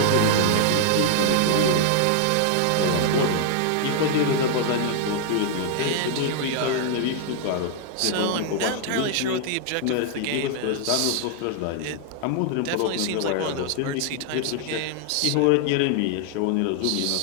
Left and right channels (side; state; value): both; different; correlation 0.00